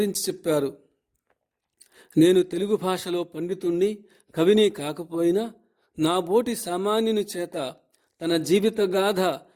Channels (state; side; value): identical; both; correlation 1.00